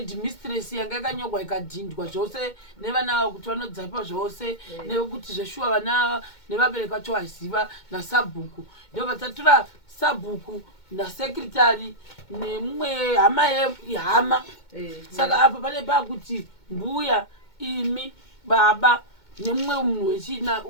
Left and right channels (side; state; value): right; late; 2.2 ms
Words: yanga yakanyorwa ikadhindwa zvose nevana kuti vanodzapa zvose nekuti zveshuwa vana nevabereki vacho vaziva nasabhuku ndo vatatora sabhuku nasekretary nemumwe hama yehama saka apa pane pakuti mbuya imi baba nemumwe munhu wechina